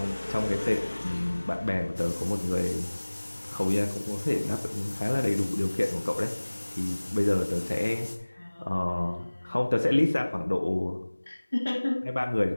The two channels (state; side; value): inverted; both; correlation -1.00